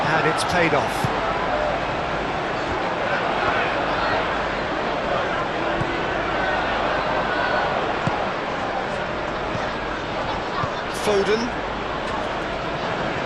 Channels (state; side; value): identical; both; correlation 1.00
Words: it's paid off. Foden.